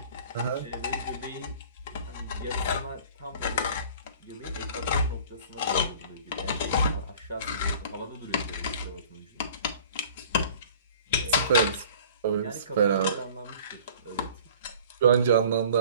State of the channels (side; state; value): both; inverted; correlation -0.47